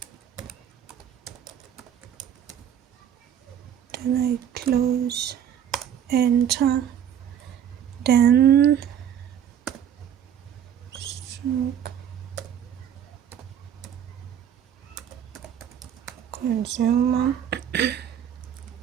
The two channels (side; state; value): left; quieter; 9.3 dB